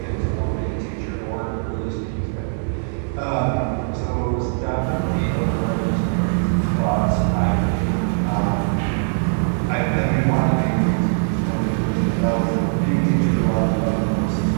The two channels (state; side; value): silent; left; 65 dB below the other